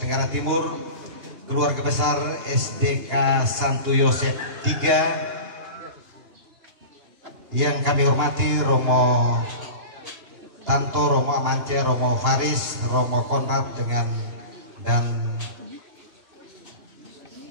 Timur, keluarga besar SDK Santo Yosef III, yang kami hormati Romo Tanto, Romo Amance, Romo Faris, Romo Konrad dan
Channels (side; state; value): left; late; 2.8 ms